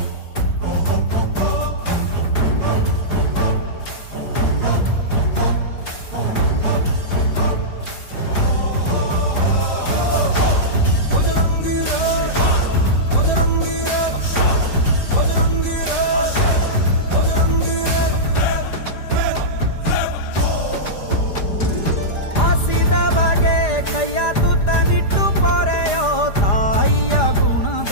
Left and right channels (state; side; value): late; right; 4.9 ms